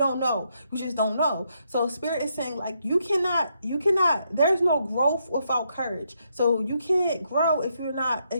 you just don't know. So spirit is saying like, you cannot, there's no growth without courage. So you can't grow if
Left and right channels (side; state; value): both; inverted; correlation -0.78